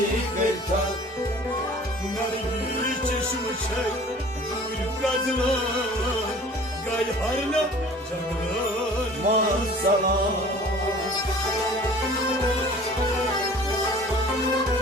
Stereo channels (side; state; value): both; normal; correlation 0.47